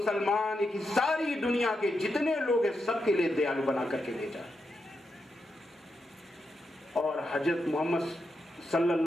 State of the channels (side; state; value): both; normal; correlation 0.85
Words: की सारी दुनिया के जितने लोग हैं सबके लिए दयालु बना करके भेजा। और हजरत मोहम्मद